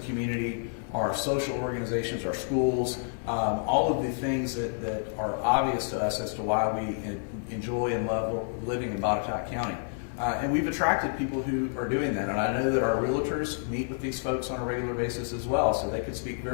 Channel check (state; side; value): silent; right; 59 dB below the other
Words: community, our social organizations, our schools, all of the things that are obvious to us as to why we enjoy and love living in Botetourt County. And we've attracted people who are doing that. And I know that our realtors meet with these folks on a regular basis as well, so they could speak